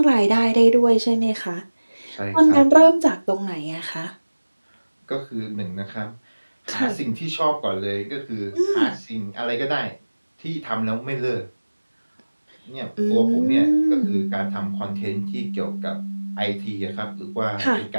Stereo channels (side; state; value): both; inverted; correlation -1.00